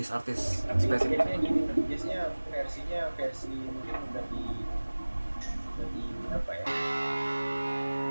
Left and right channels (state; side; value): inverted; both; correlation -1.00